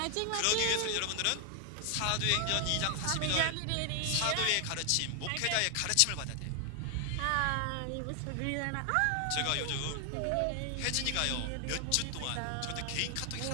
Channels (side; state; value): both; different; correlation 0.00